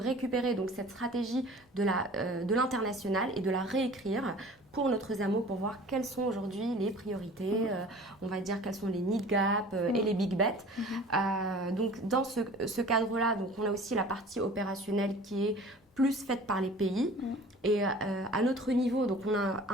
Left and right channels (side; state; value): both; normal; correlation 0.45